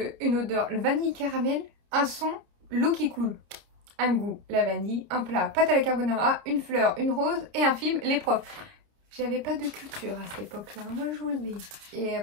une odeur, le vanille caramel, un son, l'eau qui coule. Un goût, la vanille, un plat, pâte à la carbonara, une fleur, une rose et un film, les profs. J'avais pas de culture à cette époque-là, moi je vous le dis. Et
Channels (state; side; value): late; left; 30 ms